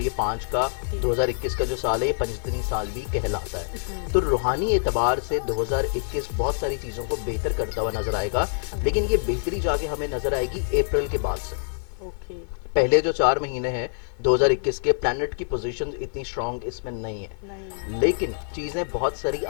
5 का 2021 का जो साल है ये पंचतनी साल भी कहलाता है। तो रूहानी एतबार से 2021 बहुत सारी चीजों को बेहतर करता हुआ नजर आएगा, लेकिन ये बेहतरी जाके हमें नजर आएगी अप्रैल के बाद से। पहले जो 4 महीने हैं 2021 के, प्लैनेट की पोजीशन इतनी स्ट्रांग इसमें नहीं है, लेकिन चीजें बहुत सारी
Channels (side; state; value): right; silent; 61 dB below the other